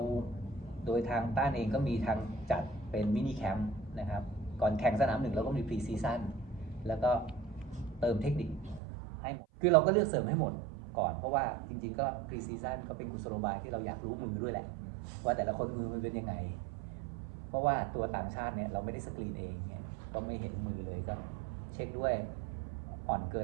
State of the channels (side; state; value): left; drops out; at 8.8 s